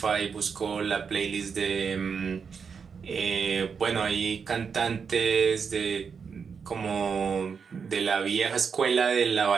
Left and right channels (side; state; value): left; quieter; 6.1 dB